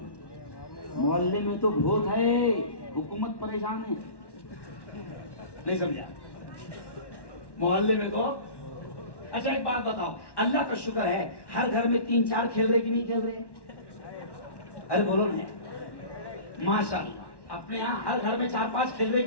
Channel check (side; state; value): right; late; 1.1 ms